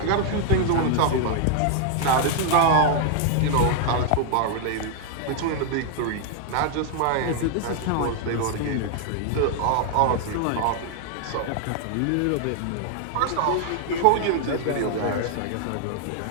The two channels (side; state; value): both; different; correlation 0.00